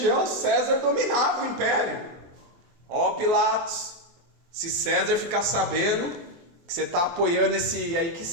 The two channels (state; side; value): late; left; 24 ms